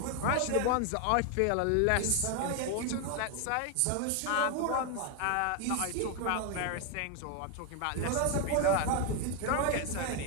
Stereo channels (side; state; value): both; different; correlation 0.01